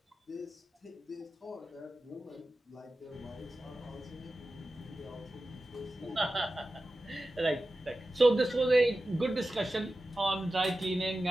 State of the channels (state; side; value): normal; both; correlation 0.94